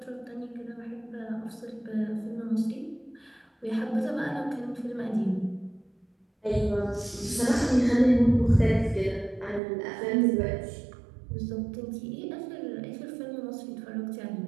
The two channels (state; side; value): drops out; left; at 9.6 s